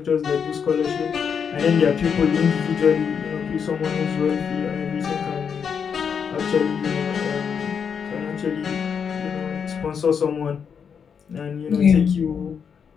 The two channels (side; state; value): right; quieter; 6.9 dB